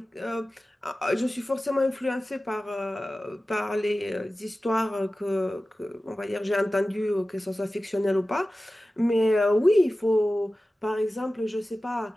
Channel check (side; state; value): both; normal; correlation 0.96